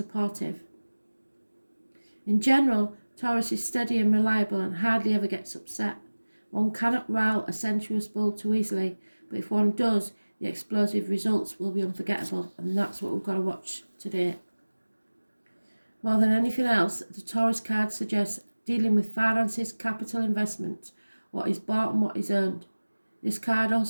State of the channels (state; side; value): inverted; both; correlation -1.00